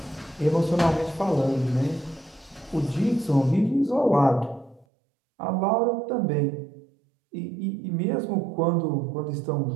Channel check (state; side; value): drops out; left; at 4.9 s